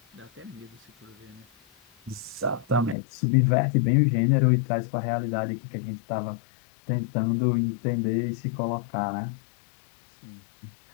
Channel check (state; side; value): drops out; right; at 3.0 s